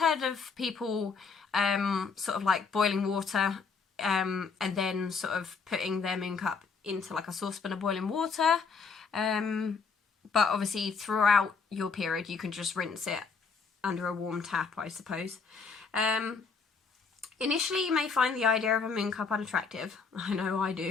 of people sort of like boiling water and then sort of putting their Moon Cup into like a saucepan of boiling water. But obviously throughout your period you can just rinse it under a warm tap, I suppose. Initially, you may find the idea of a Moon Cup unattractive. I know I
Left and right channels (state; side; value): quieter; right; 5.1 dB